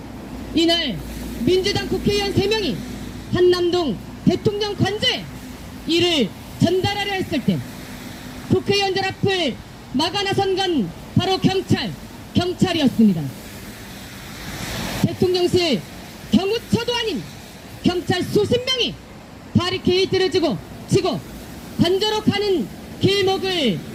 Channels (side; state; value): both; identical; correlation 1.00